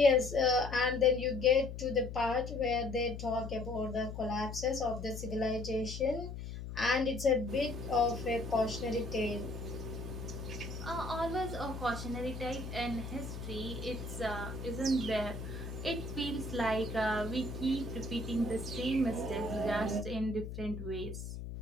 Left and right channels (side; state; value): left; noise; hum, 8 dB below the sound